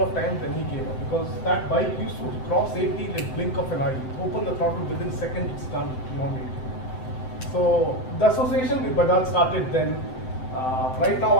of times, then he gave up, because that bike used to cross 80 in the blink of an eye. Open the throttle, within seconds it's done, beyond 80. So the association with Bajaj started then. Right now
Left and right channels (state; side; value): late; right; 7.8 ms